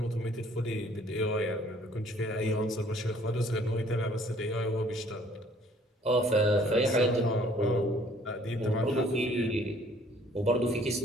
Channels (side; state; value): both; normal; correlation 0.58